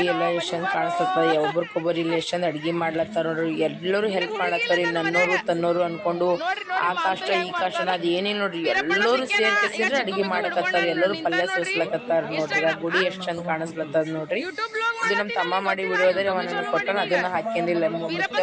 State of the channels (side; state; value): both; identical; correlation 1.00